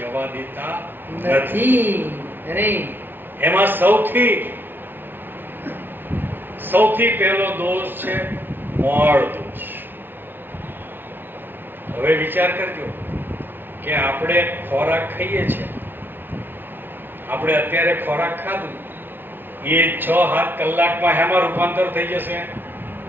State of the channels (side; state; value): left; late; 0.098 ms